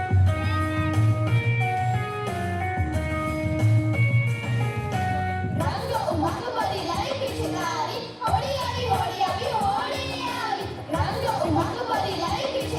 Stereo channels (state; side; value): identical; both; correlation 1.00